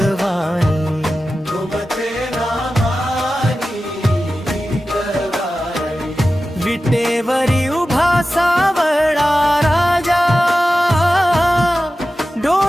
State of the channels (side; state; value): both; normal; correlation 0.94